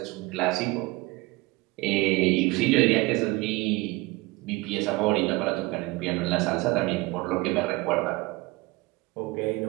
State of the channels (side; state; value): left; quieter; 22.3 dB